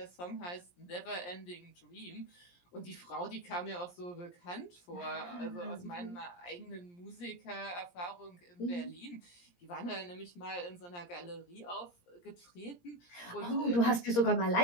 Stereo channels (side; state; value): right; late; 17 ms